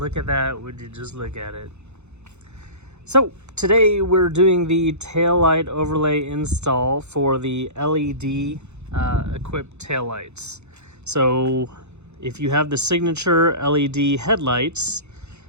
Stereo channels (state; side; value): late; left; 0.82 ms